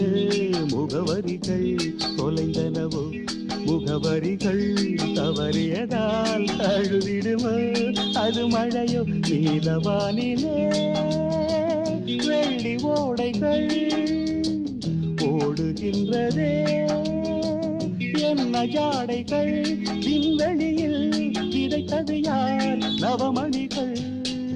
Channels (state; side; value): identical; both; correlation 1.00